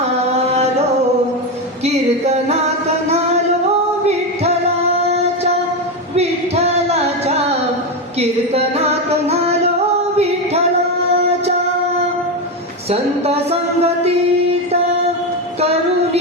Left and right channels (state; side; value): normal; both; correlation 0.12